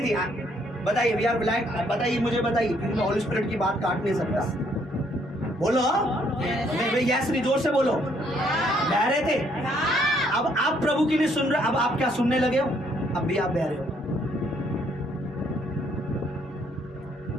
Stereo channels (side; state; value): both; normal; correlation 0.68